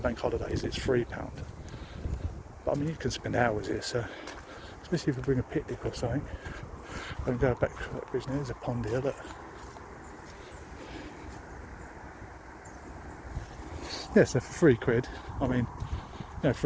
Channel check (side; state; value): both; identical; correlation 1.00